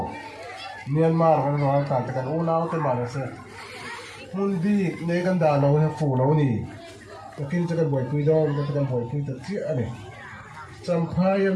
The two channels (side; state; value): both; identical; correlation 1.00